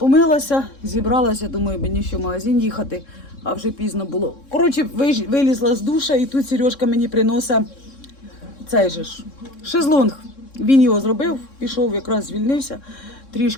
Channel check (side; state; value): right; late; 3.7 ms